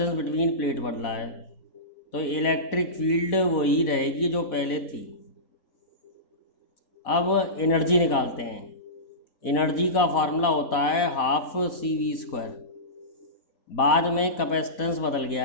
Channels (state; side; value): late; right; 4.1 ms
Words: बिटवीन प्लेट बदला है, तो इलेक्ट्रिक फील्ड वही रहेगी जो पहले थी। अब एनर्जी निकालते हैं। एनर्जी का फार्मूला होता है हाफ सी वी स्क्वायर। बाद में कैपेसिटेंस बदल